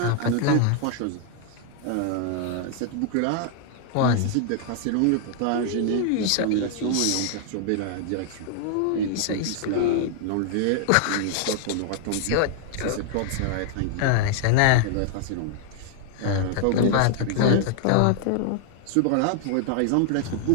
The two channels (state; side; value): different; both; correlation 0.00